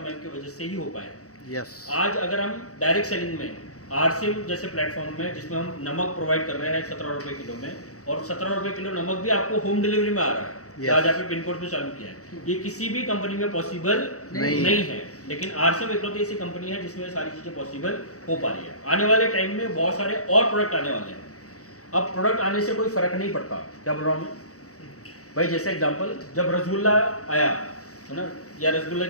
की वजह से ही हो पाए। आज अगर हम डायरेक्ट सेलिंग में आरसीएम जैसे प्लेटफॉर्म में, जिसमें हम नमक प्रोवाइड कर रहे हैं 17 रुपए किलो में, और 17 रुपए किलो नमक भी आपको होम डिलीवरी में आ रहा है, आज आपने पिन कोड पे चालू किया है, ये किसी भी कंपनी में पॉसिबल नहीं है। लेकिन आरसीएम इकलौती ऐसी कंपनी है जिसमें सारी चीजें पॉसिबल हो पा रही है। आने वाले टाइम में बहुत सारे और प्रोडक्ट आने वाले हैं। अब प्रोडक्ट आने से कोई फर्क नहीं पड़ता, क्या बोल रहा हूँ मैं भाई? जैसे एग्जांपल, जब रसगुल्ला आया है ना, या रसगुल्ला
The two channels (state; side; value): late; right; 0.65 ms